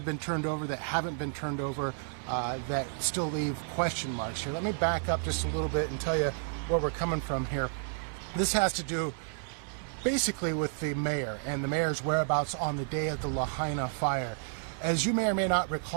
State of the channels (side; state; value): left; silent; 57 dB below the other